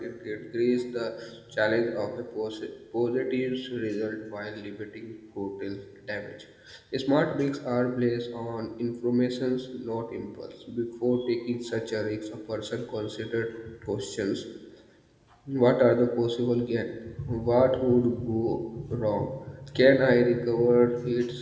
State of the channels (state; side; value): identical; both; correlation 1.00